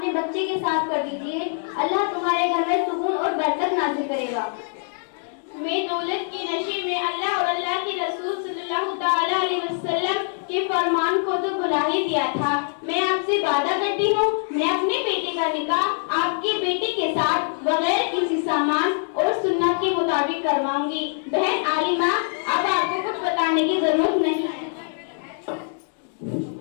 बच्चे के साथ कर दीजिए। अल्लाह तुम्हारे घर में सुकून और बरकत नाज़िल करेगा। मैं दौलत के नशे में अल्लाह और अल्लाह के रसूल सल्लल्लाहु ताला अलैहि वसल्लम के फरमान को तो भुला ही दिया था। मैं आपसे वादा करती हूँ, मैं अपने बेटे का निकाह आपके बेटे के साथ बगैर किसी सामान और सुन्नत के मुताबिक करवाऊंगी। बहन आलिमा, अब आपको कुछ बताने की जरूरत नहीं है।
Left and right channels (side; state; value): right; silent; digital silence